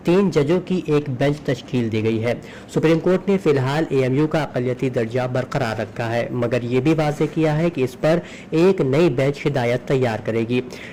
3 जजों की एक बेंच तश्कील दी गई है। सुप्रीम कोर्ट ने फिलहाल AMU का अक़लियती दर्जा बरकरार रखा है, मगर ये भी वाज़ेह किया है कि इस पर एक नई बेंच हिदायत तैयार करेगी।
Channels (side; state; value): both; identical; correlation 1.00